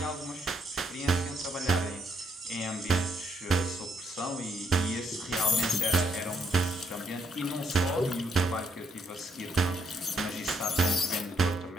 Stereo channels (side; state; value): both; normal; correlation 0.74